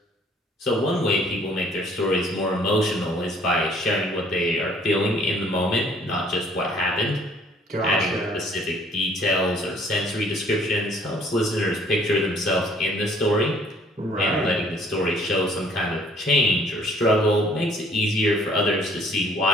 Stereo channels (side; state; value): both; normal; correlation 0.59